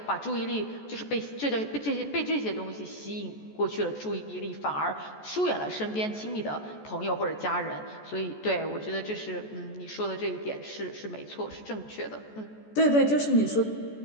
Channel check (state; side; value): late; right; 14 ms